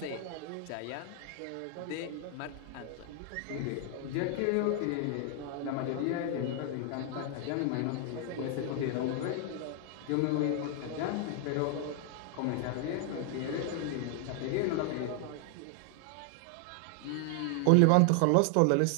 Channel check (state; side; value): different; both; correlation 0.00